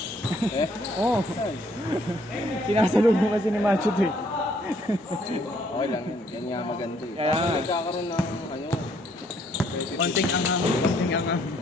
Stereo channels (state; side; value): normal; both; correlation 0.66